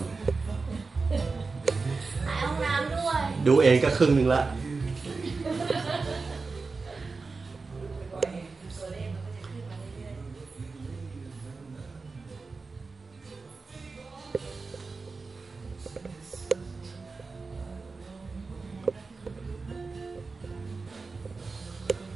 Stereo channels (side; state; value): left; quieter; 4.2 dB